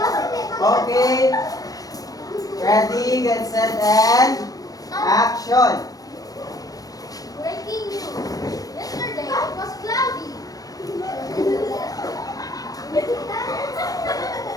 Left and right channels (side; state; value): right; late; 0.18 ms